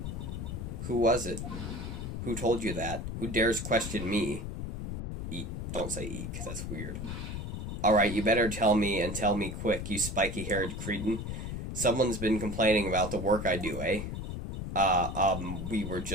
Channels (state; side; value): noise; left; rumble, 5 dB below the sound